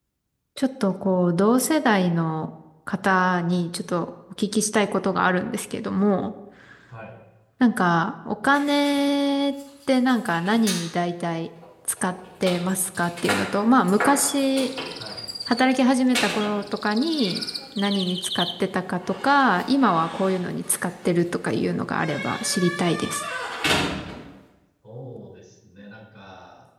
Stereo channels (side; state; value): both; identical; correlation 1.00